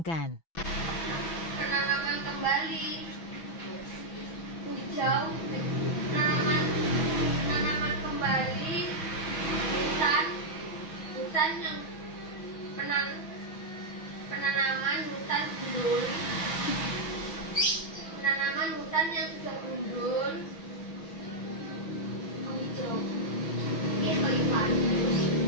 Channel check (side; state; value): right; late; 6.1 ms